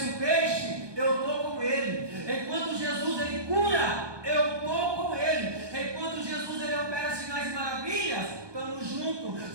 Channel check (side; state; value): left; late; 1.2 ms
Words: o peixe, eu estou com Ele. Enquanto Jesus ele cura, eu estou com Ele. Enquanto Jesus ele opera sinais e maravilhas, estamos